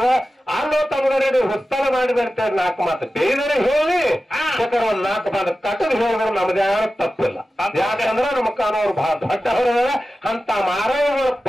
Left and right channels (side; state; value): both; normal; correlation 0.94